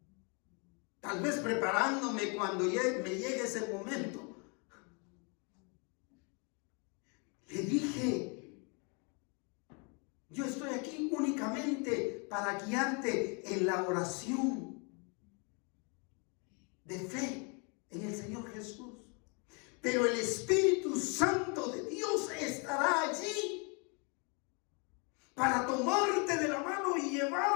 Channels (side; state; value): right; quieter; 34.3 dB